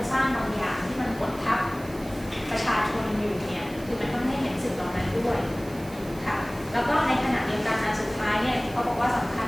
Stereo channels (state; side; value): noise; right; hiss, 20 dB below the sound